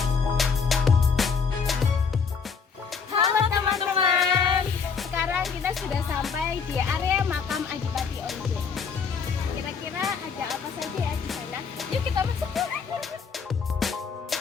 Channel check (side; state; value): right; quieter; 5.8 dB